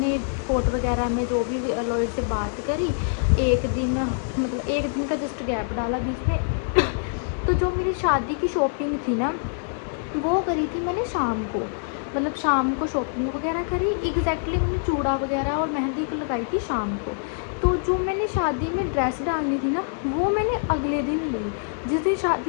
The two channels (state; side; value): silent; right; digital silence